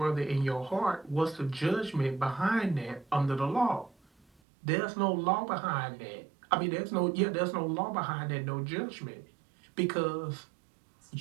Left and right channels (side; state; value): left; drops out; at 4.4 s